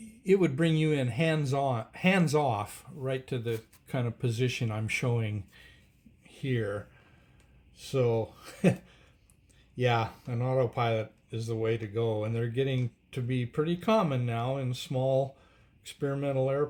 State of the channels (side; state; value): both; identical; correlation 1.00